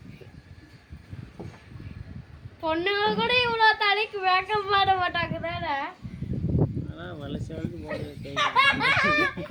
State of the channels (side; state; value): both; identical; correlation 1.00